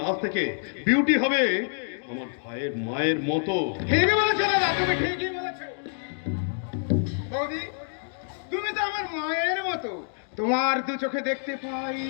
আজ থেকে বিউটি হবে আমার ভাইয়ের মায়ের মতো। ঠিকই বলেছো দাদা, তুমি ঠিকই বলেছো। বৌদি, তুমি তো আমার মায়ের মতো। তোমার দু চোখে দেখতে পাই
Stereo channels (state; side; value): silent; right; digital silence